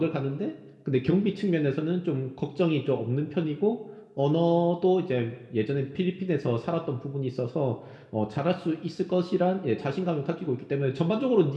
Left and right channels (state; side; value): identical; both; correlation 1.00